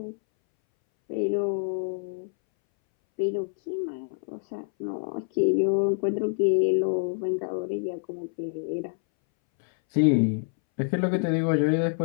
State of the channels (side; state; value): right; silent; 60 dB below the other